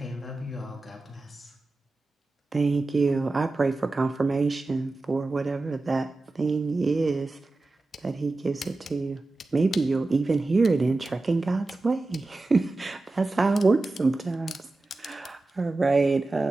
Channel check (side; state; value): left; quieter; 3.2 dB